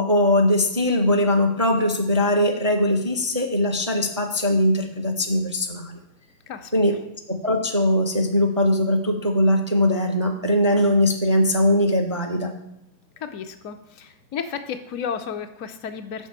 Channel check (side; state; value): both; inverted; correlation -0.60